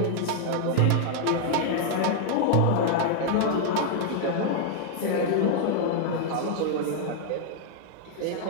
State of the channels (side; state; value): both; different; correlation 0.00